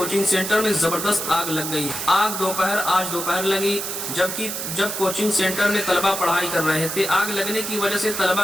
سینٹر میں زبردست آگ لگ گئی۔ آگ آج دوپہر لگی، جب کوچنگ سینٹر میں طلبہ پڑھائی کر رہے تھے۔ آگ لگنے کی وجہ سے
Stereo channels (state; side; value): noise; right; hiss, 4 dB below the sound